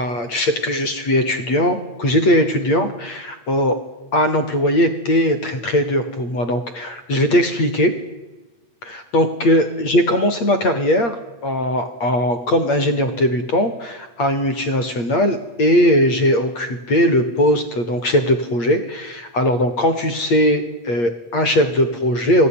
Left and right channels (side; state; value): right; late; 8.6 ms